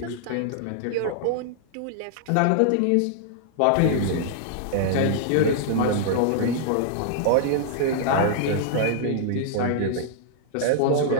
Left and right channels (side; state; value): both; different; correlation -0.01